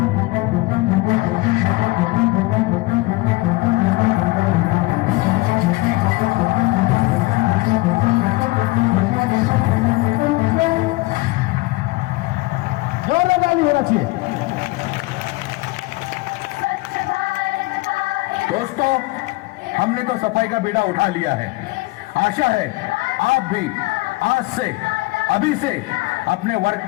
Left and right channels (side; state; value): right; quieter; 21.8 dB